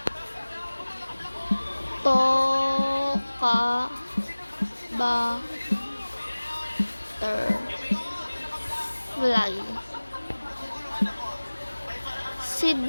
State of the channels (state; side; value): inverted; both; correlation -1.00